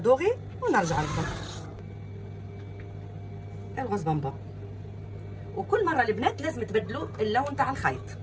ونرجع لكم الغوز بامبا. وكل مره البنات لازم تبدلوا اللون تاع الخيط.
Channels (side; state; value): both; identical; correlation 1.00